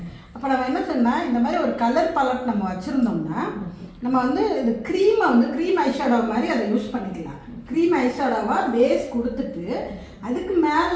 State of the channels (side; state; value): both; identical; correlation 1.00